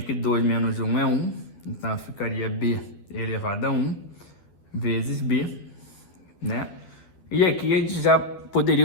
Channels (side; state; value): right; late; 11 ms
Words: 2 menos 1 é 1, então ficaria B elevado a 1 vezes B, né? E aqui a gente já